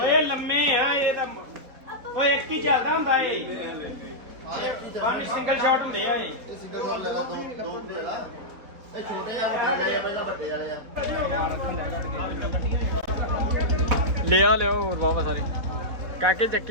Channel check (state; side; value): late; left; 4.1 ms